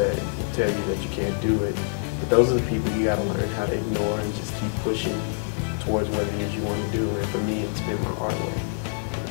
will tell you that you can't do it. But those are the people you got to learn how to ignore and just keep pushing towards what it is you want to do. And for me, it's been my artwork.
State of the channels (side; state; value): right; silent; digital silence